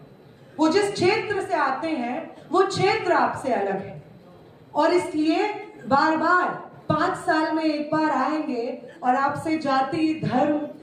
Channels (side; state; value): both; identical; correlation 1.00